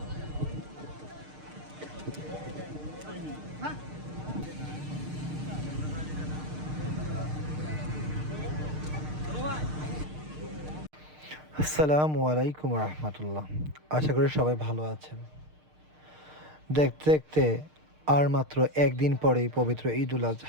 আসসালামু আলাইকুম রহমতুল্লাহ। আশা করি সবাই ভালো আছেন। দেখতে দেখতে আর মাত্র একদিন পরেই পবিত্র ঈদুল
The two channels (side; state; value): left; late; 6.6 ms